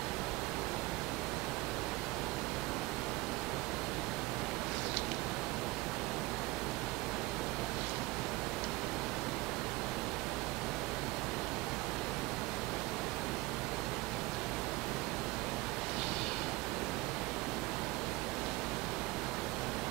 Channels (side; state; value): left; quieter; 21.0 dB